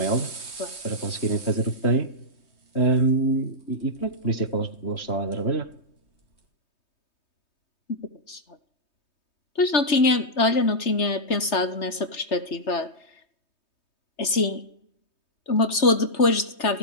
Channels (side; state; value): right; late; 3.4 ms